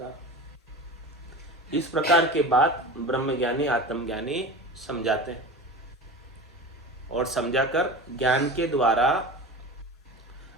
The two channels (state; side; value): normal; both; correlation 0.32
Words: इस प्रकार के बात ब्रह्मज्ञानी, आत्मज्ञानी समझाते हैं और समझाकर ज्ञान के द्वारा